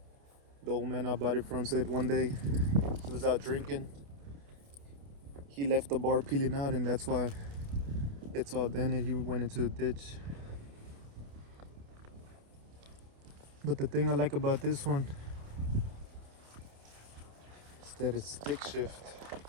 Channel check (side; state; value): left; late; 28 ms